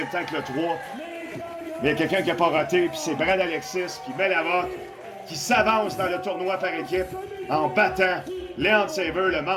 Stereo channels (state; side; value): identical; both; correlation 1.00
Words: temps que le 3. Mais il y a quelqu'un qui n'a pas roté, puis c'est Brad Alexis, puis Belavoc, qui s'avance dans le tournoi par équipe en battant Leon Saver, le